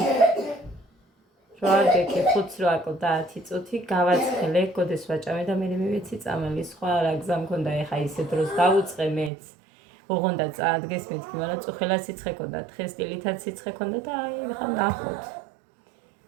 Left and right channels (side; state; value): left; drops out; at 9.3 s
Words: როარდეკი 5 რო აკლდა 10 წუთი გავაცხელე გოდეს ვაჭამე და მე მივეცი წამალი სხვა რა გზა მქონდა ეხა ისე დროს დავუწყე მეც ოღონდა წაადგეს მეთქი მაგრამ წუხელა სიცხე ქონდა თხესტილითაც სიცხე ქონდა და აი ხა ნახოთ